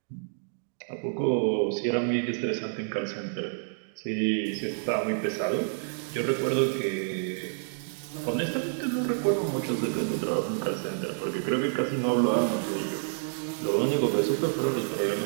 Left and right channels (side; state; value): left; silent; digital silence